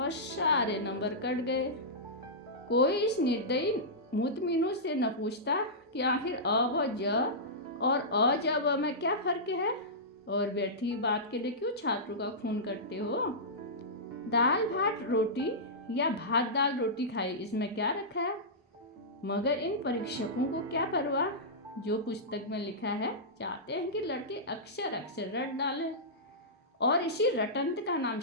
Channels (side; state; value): both; normal; correlation -0.14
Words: सारे नंबर कट गए। कोई इस निर्दयी मुतमिनों से न पूछता कि आखिर अ ब ज और अ ज ब में क्या फ़र्क है, और व्यर्थी बात के लिए क्यों छात्रों का खून करते हो? दाल भात रोटी या भात दाल रोटी खाई, इसमें क्या रखा है? मगर इन परीक्षकों को क्या परवाह? जो पुस्तक में लिखा है चाहते हैं कि लड़के अक्षर अक्षर रट डालें, और इसी रटंत का नाम